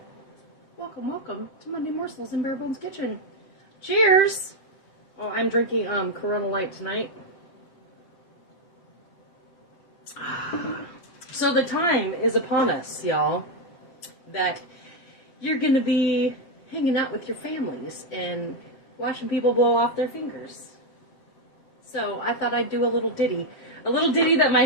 Welcome, welcome to Monday Morsels in Bare Bones Kitchen. Cheers! Oh, I'm drinking Corona Light tonight. So the time is upon us, y'all, that you're gonna be hanging out with your families and watching people blow off their fingers. So I thought I'd do a little ditty. A little ditty that my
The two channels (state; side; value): late; right; 7.6 ms